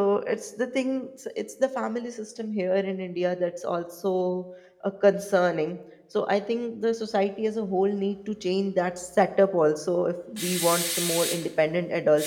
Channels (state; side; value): identical; both; correlation 1.00